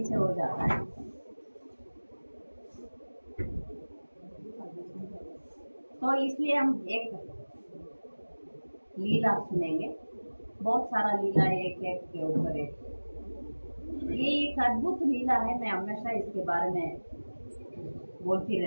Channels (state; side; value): inverted; both; correlation -1.00